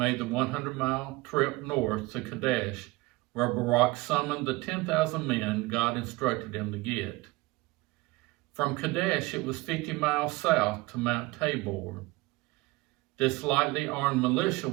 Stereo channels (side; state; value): left; quieter; 21.9 dB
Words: the 100-mile trip north to Kadesh, where Barak summoned the 10,000 men God instructed him to get. From Kadesh, it was 50 miles south to Mount Tabor. This lightly armed militia